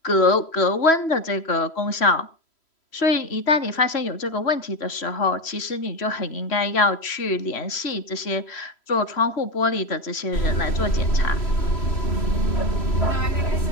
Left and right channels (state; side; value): late; right; 3.0 ms